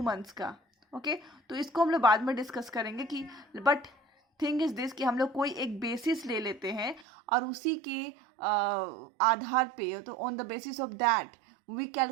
मंथ्स का. ओके, तो इसको हम लोग बाद में डिस्कस करेंगे कि बट थिंग इज दिस कि हम लोग कोई एक बेसिस ले लेते हैं और उसी के आधार पे, तो on the basis of that we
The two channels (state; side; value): drops out; left; at 7.1 s